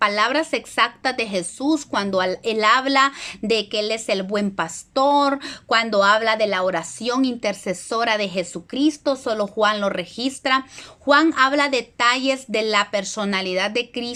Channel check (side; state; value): both; identical; correlation 1.00